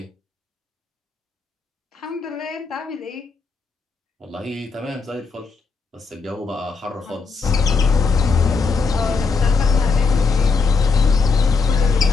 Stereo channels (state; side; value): quieter; right; 4.6 dB